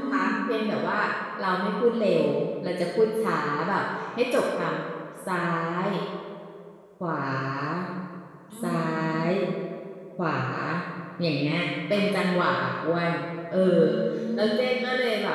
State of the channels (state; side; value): identical; both; correlation 1.00